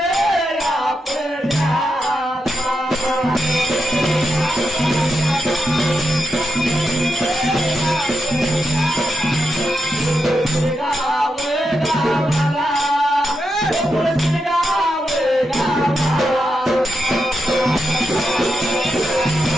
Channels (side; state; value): both; normal; correlation 0.85